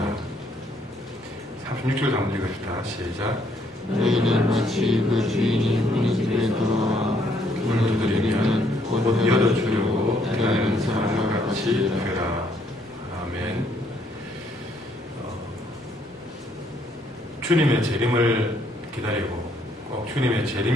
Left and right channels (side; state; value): right; noise; rumble, 28 dB below the sound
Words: 36절 한번 읽읍시다. 시작. 너희는 마치 그 주인이 우리 집에 들어와 문을 두드리면 곧 열어주려고 기다리는 사람과 같이 되라. 아멘. 주님의 재림을 기다리고, 꼭 주님의